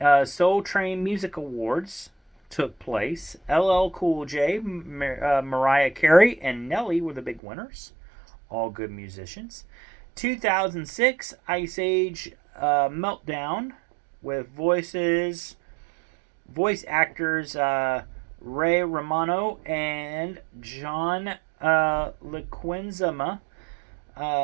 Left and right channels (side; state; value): left; drops out; at 7.4 s